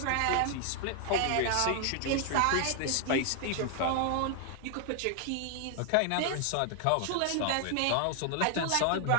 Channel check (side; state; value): both; different; correlation 0.00